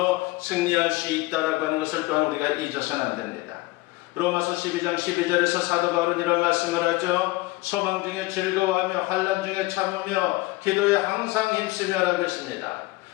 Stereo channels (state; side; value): quieter; right; 20.7 dB